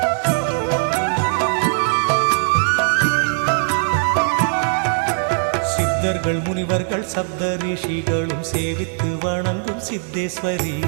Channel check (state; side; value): silent; left; 66 dB below the other